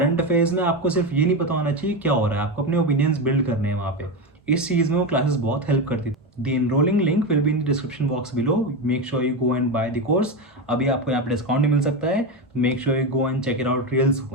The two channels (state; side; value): normal; both; correlation 0.15